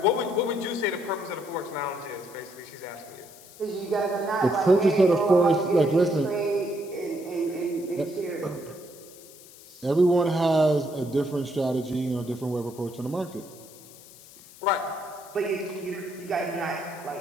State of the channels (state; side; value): noise; left; hiss, 20 dB below the sound